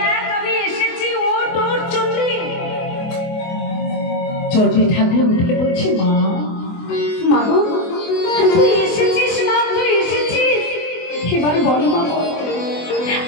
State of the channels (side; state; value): right; late; 24 ms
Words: আমি এসেছি, ও তোর চণ্ডী। চণ্ডী ঠাকুর উঠে বলছে, মা, মাগো তুই এসেছিস, মা তুই এসেছিস, এবার বল মা, বল